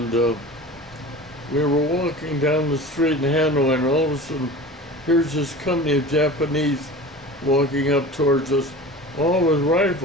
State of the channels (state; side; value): normal; both; correlation 0.36